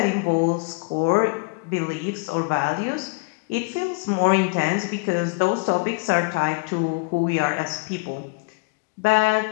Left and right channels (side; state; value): right; quieter; 31.8 dB